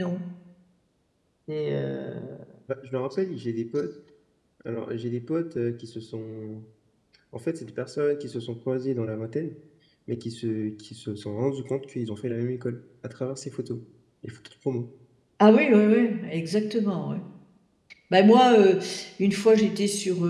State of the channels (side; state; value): both; identical; correlation 1.00